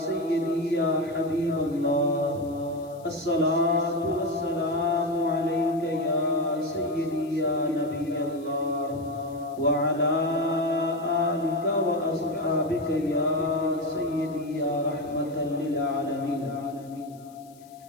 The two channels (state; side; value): noise; left; hiss, 27 dB below the sound